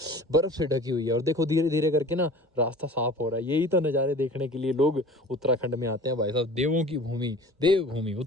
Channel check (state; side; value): normal; both; correlation 0.42